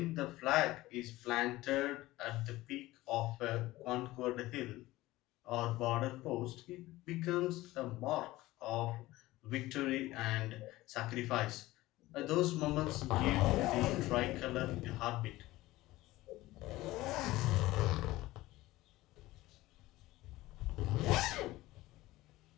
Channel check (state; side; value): quieter; right; 17.9 dB